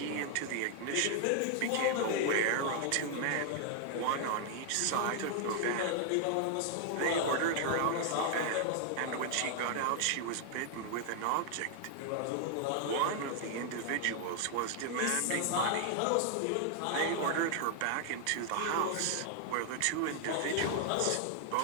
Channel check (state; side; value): different; both; correlation 0.00